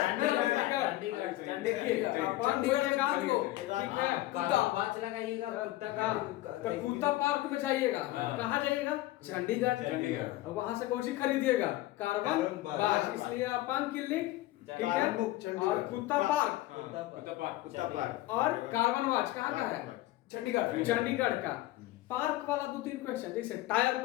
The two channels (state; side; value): quieter; right; 16.9 dB